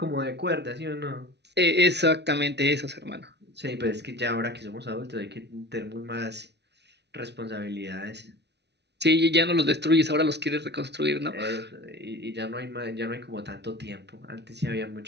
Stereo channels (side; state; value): left; late; 0.50 ms